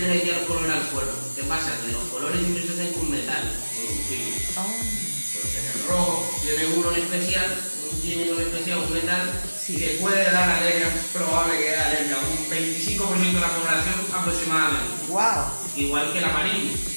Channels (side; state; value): both; inverted; correlation -1.00